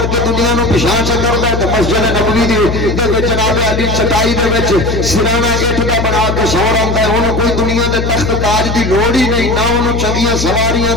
کے دنیا نو پچھاں چ کردا ہے۔ تے مسجد نبوی دے وچ جناب علی چٹائی دے وچ سرانہ اٹھ دا بنا کے سو رہندا ہے، اونوں کوئی دنیا دے تخت تاج دی لوڑ ہی نہیں، نہ اونوں چنگیاں سواریاں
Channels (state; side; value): noise; left; hum, 3 dB below the sound